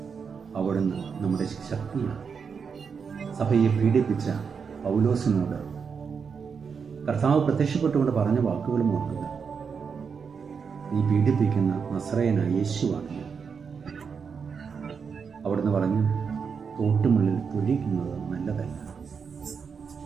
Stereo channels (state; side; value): quieter; left; 6.0 dB